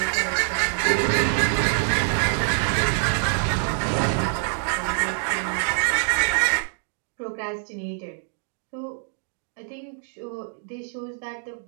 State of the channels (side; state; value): left; silent; 62 dB below the other